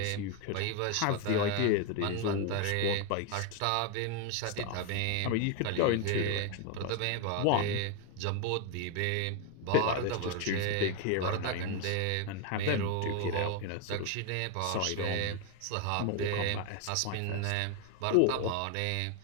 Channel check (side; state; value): both; different; correlation 0.01